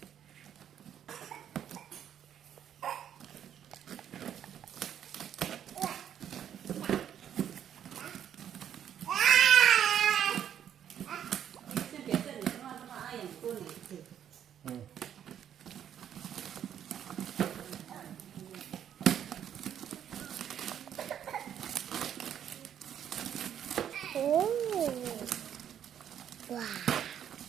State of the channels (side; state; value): left; quieter; 9.6 dB